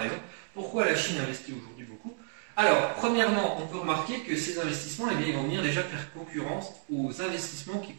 Pourquoi la Chine investit aujourd'hui beaucoup ? Alors, premièrement, on peut remarquer que ces investissements, eh bien, ils vont venir déjà faire concurrence aux investissements qui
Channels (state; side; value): silent; left; digital silence